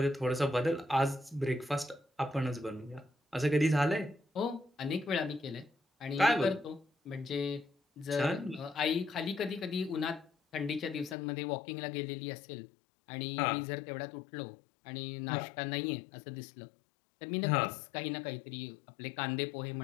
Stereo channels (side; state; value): right; drops out; at 11.2 s